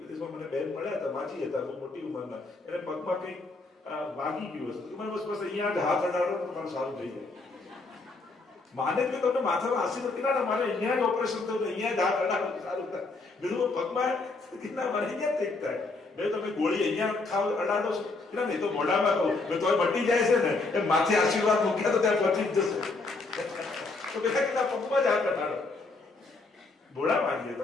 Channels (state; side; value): quieter; right; 3.5 dB